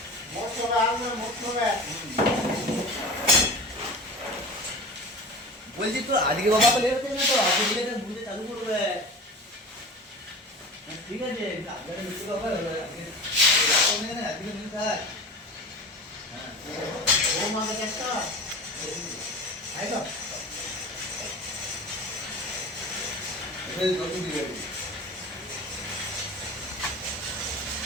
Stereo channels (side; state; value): both; normal; correlation 0.34